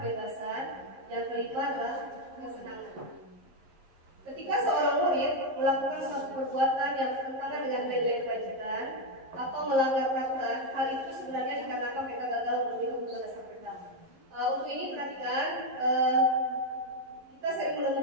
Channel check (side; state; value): left; late; 11 ms